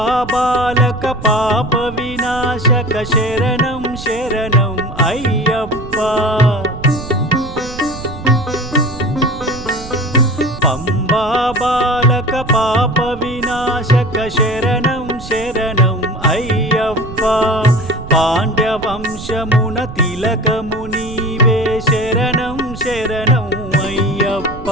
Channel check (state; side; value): noise; right; rumble, 12 dB below the sound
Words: పాలక శరణం శరణం అయ్యప్ప పంబా బాలక పాప వినాశక శరణం శరణం అయ్యప్ప పాండ్యవంశమున తిలకము నీవే శరణం శరణం అయ్యప్ప